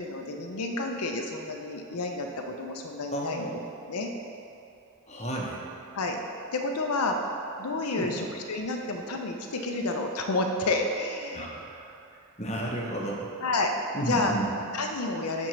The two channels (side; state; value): both; normal; correlation 0.02